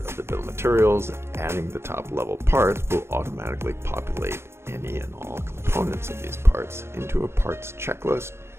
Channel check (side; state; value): left; late; 0.12 ms